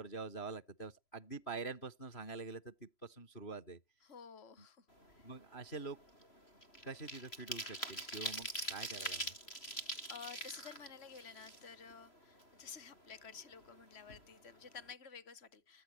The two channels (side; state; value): right; late; 3.0 ms